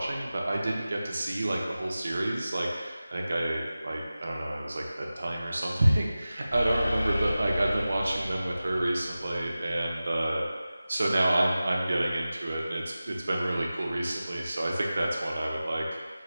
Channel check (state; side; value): inverted; both; correlation -0.96